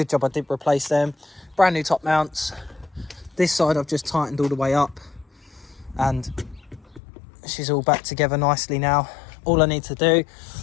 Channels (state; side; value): drops out; right; at 7.0 s